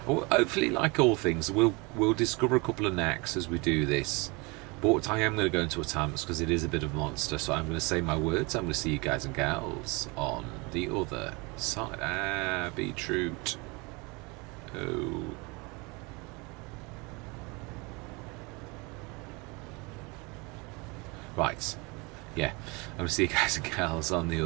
hopefully, like all things, we'll discover a couple of knacks as we do this. But I am going to go into a time-lapse because it is a bit of a monster, so I'm going to say my words. I'm going to see you guys and gals on the other side. Beetroot. Oh. Right. Yeah. I'm going to see you guys and gals on the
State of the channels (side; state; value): left; quieter; 27.4 dB